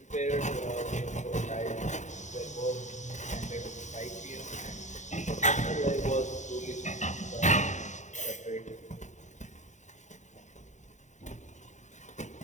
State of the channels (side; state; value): right; late; 0.34 ms